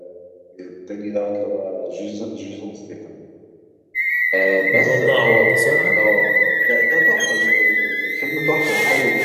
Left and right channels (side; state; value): both; identical; correlation 1.00